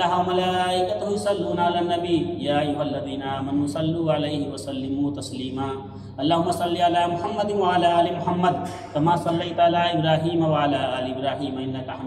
وملائکتہ یصلون علی النبی یا ایھا الذین آمنوا صلوا علیہ وسلموا تسلیما اللہم صل علی محمد وعلی آل محمد کما صلیت علی ابراہیم وعلی آل ابراہیم انک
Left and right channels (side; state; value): both; identical; correlation 1.00